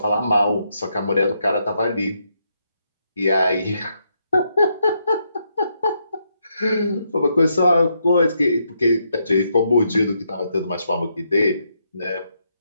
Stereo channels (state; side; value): inverted; both; correlation -0.79